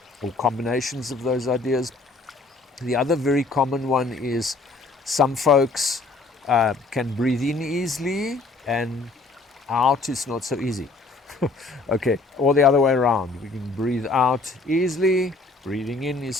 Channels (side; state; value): right; quieter; 3.5 dB